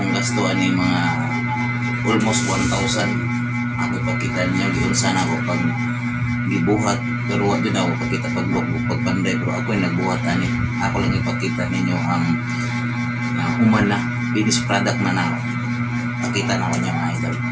gastuan ni mga almost 1,000. Ako ipakita ninyo giunsa na ako pag gibuhat, pero wala din ako pakita pagpanday, pero ako yung nagbuhat ani. Ako lang ipakita ninyo ang human na finished product na ako. Pakita na ako niya mga idol.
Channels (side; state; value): both; identical; correlation 1.00